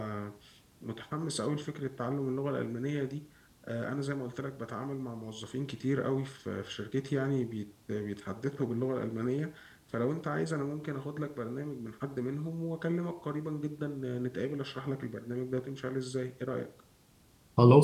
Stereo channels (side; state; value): both; identical; correlation 1.00